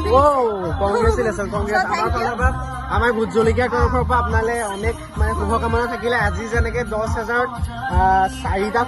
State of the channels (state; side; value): identical; both; correlation 1.00